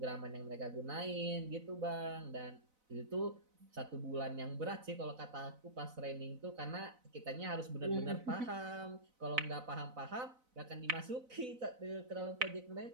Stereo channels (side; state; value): left; late; 4.0 ms